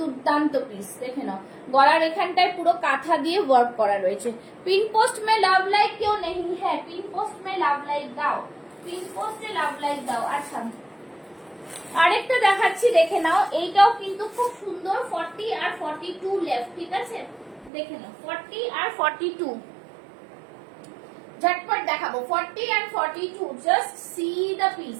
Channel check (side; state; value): left; drops out; at 17.7 s